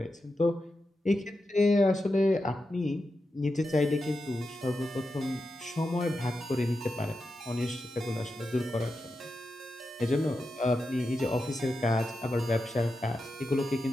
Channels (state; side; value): normal; both; correlation 0.89